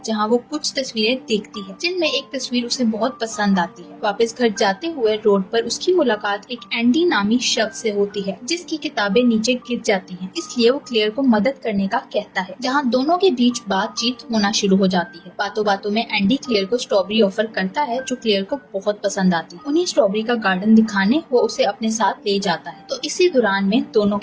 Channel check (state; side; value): identical; both; correlation 1.00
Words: जहाँ वो कुछ तस्वीरें देखती है जिनमें एक तस्वीर उसे बहुत पसंद आती है। वापस घर जाते हुए रोड पर उसकी मुलाकात एक एंडी नामी शख्स से होती है जिसकी किताबें नीचे गिर जाती हैं। इसलिए वो क्लेयर को मदद करने का कहता है जहाँ दोनों के बीच बातचीत होना शुरू हो जाती है। बातों बातों में एंडी क्लेयर को स्ट्रॉबेरी ऑफर करता है जो क्लेयर को बहुत पसंद आती है। उन्हें स्ट्रॉबेरी का गार्डन दिखाने वो उसे अपने साथ ले जाता है। तो इसी दौरान में दोनों